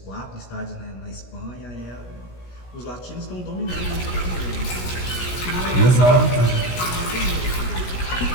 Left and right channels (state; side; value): late; right; 16 ms